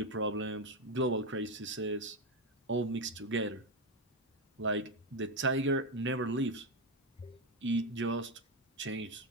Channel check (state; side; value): normal; both; correlation 0.09